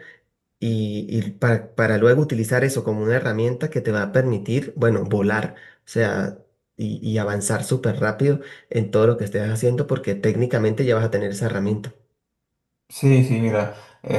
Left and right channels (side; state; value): both; identical; correlation 1.00